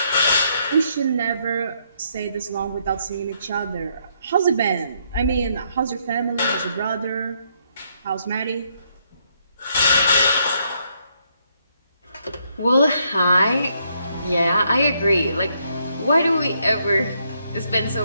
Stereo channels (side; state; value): both; inverted; correlation -0.73